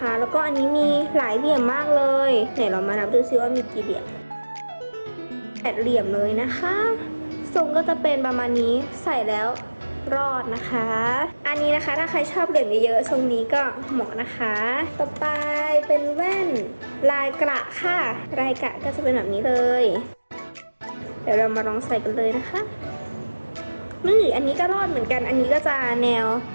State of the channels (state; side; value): inverted; both; correlation -1.00